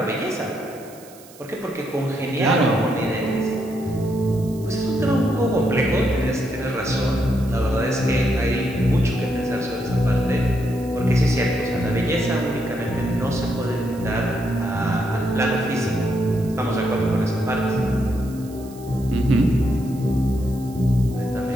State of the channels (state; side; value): noise; right; hiss, 22 dB below the sound